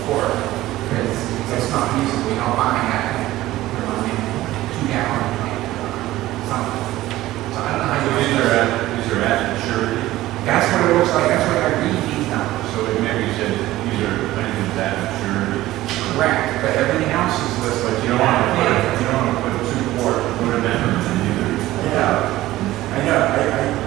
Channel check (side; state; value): left; quieter; 16.1 dB